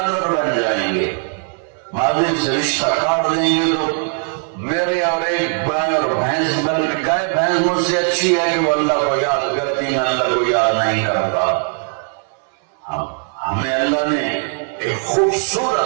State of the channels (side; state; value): left; silent; 59 dB below the other